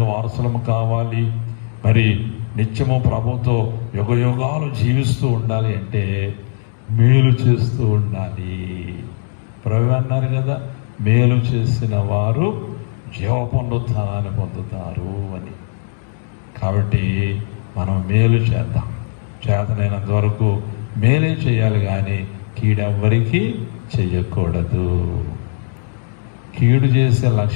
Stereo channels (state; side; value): silent; right; digital silence